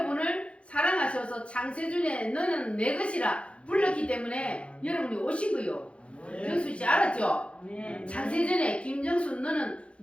사랑하셔서 창세전에 너는 내 것이라 불렀기 때문에 여러분이 오신 거요. 정수씨 알았죠? 창세전에 김정수 너는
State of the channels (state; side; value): late; right; 0.060 ms